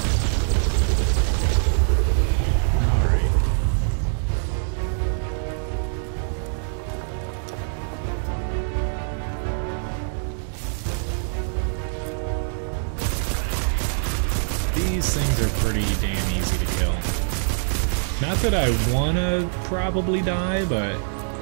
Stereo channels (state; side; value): silent; left; digital silence